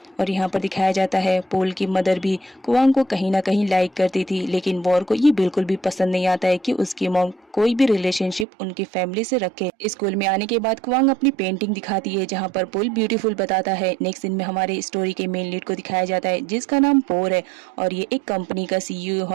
और यहाँ पर दिखाया जाता है पोल की मदर भी कोवांग को कहीं ना कहीं लाइक करती थी, लेकिन वॉर को ये बिल्कुल भी पसंद नहीं आता है कि उसकी मॉम कोई भी रिलेशनशिप उनकी फैमिली से रखे। स्कूल में आने के बाद क्वांग अपनी पेंटिंग दिखाती है, जहाँ पर पुल ब्यूटीफुल बताता है। नेक्स्ट सीन में हमारे स्टोरी के मेन लीड को दिखाया जाता है, जिसका नाम पोर है और ये एक कंपनी का CEO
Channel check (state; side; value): drops out; left; at 8.5 s